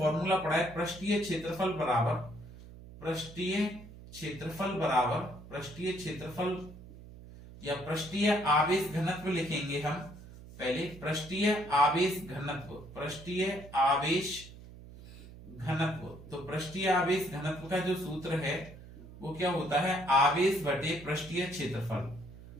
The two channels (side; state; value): right; noise; hum, 17 dB below the sound